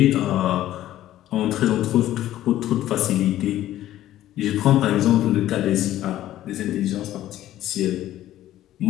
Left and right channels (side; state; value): right; quieter; 13.5 dB